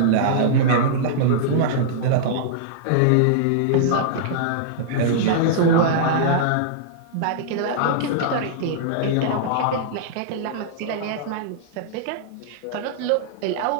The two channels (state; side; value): different; both; correlation -0.02